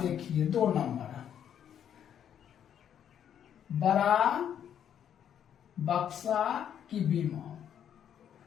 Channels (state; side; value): quieter; right; 9.3 dB